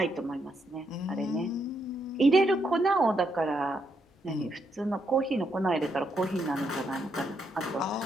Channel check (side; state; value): both; normal; correlation 0.78